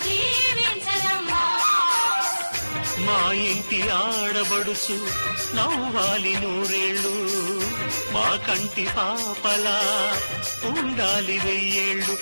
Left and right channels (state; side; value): inverted; both; correlation -0.99